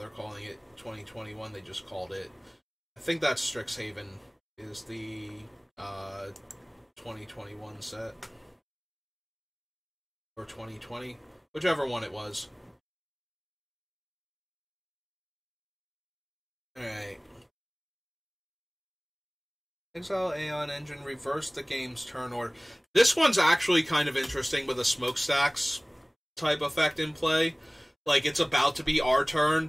calling it 2021. They just called it. I think that's Strixhaven is the 2021 set. Or 2020. Whichever one it was. Alright. Exile Aeon Engine, reverse the game's turn order. This one's actually kind of interesting with a smokestacks type effect in play. Like, it's about to be our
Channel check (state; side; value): identical; both; correlation 1.00